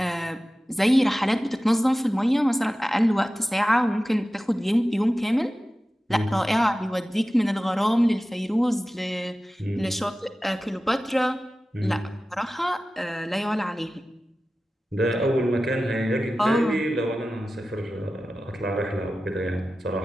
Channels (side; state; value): both; normal; correlation 0.95